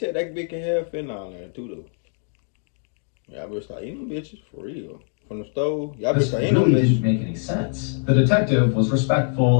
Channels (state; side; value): silent; right; 57 dB below the other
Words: that bitch can have fentanyl in there too, though. Y'all better start eating them bitches for real. From the stove, y'all better start eating them bitches. This really didn't make any sense. The detective was